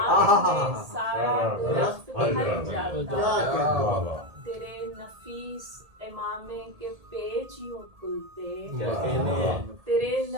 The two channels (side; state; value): left; late; 1.8 ms